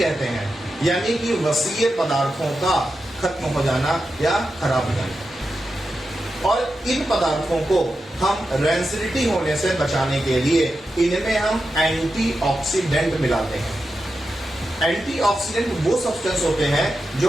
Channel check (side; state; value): both; normal; correlation 0.90